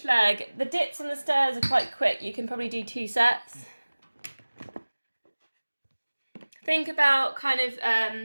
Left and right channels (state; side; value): inverted; both; correlation -1.00